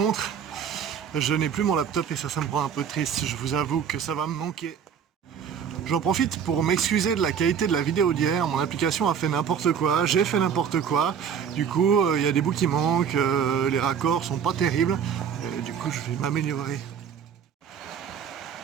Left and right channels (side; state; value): left; quieter; 7.6 dB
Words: je n'ai plus mon laptop et ça me rend un peu triste. Je vous avoue que ça va me manquer. J'en profite pour m'excuser de la qualité de la vidéo d'hier. Mon application a fait n'importe quoi, j'ai fait n'importe quoi. Du coup, il y a des bouts qui manquent, les raccords sont pas terribles. Du coup, je vais m'améliorer.